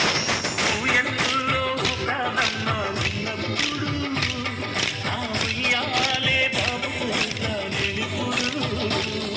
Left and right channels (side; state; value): both; identical; correlation 1.00